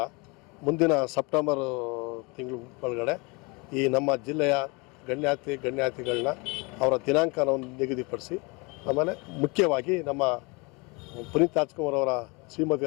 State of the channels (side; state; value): right; quieter; 28.3 dB